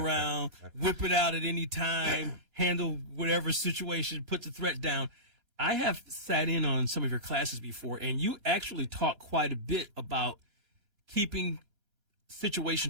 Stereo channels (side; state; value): left; late; 4.2 ms